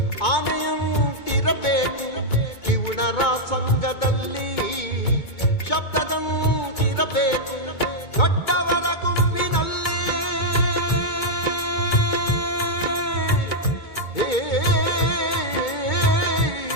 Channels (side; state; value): right; late; 2.2 ms